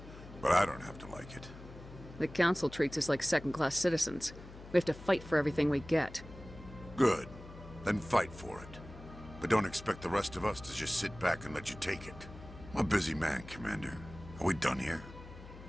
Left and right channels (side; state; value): left; noise; hum, 16 dB below the sound